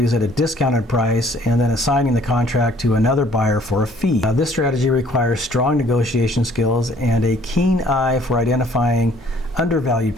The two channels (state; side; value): normal; both; correlation 0.58